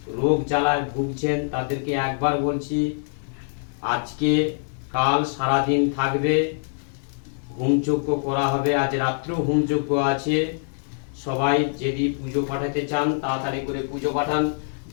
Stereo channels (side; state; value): right; silent; digital silence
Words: রোগ জ্বালায় ভুগছেন তাদেরকে একবার বলছি, আজকে কাল সারাদিন থাকবে, হোমযজ্ঞ করা হবে। আজ রাত্রেও হোমযজ্ঞ আছে। সবাই যদি পুজো পাঠাতে চান তাড়াতাড়ি করে পুজো পাঠান।